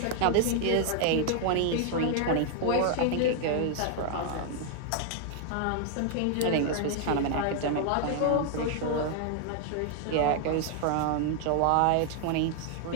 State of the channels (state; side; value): different; both; correlation 0.00